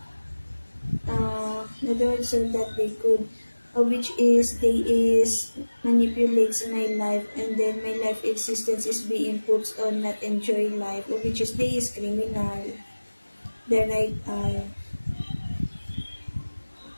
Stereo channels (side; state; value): both; inverted; correlation -1.00